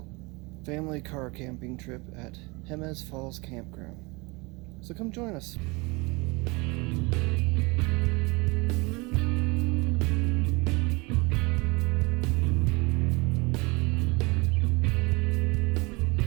family car camping trip at Jemez Falls Camp Ground. So come join us.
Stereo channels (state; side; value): quieter; left; 26.5 dB